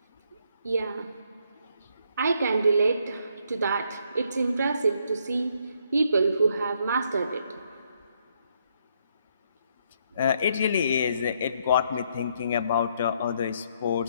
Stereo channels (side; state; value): both; inverted; correlation -0.72